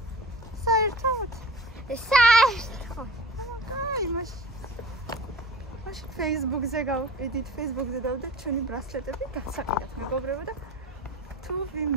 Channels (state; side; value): normal; both; correlation 0.38